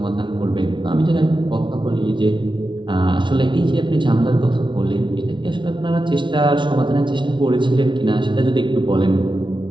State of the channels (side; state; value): left; late; 0.24 ms